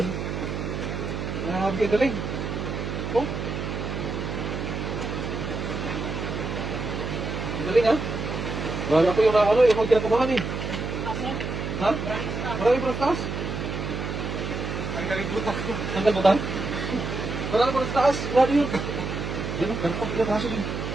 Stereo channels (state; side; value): noise; right; hum, 4 dB below the sound